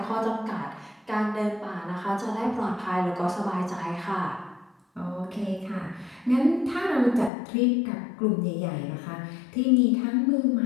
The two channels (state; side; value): drops out; right; at 7.3 s